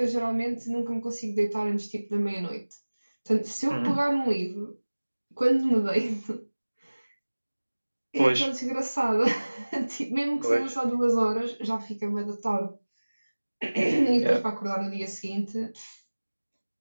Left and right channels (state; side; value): inverted; both; correlation -1.00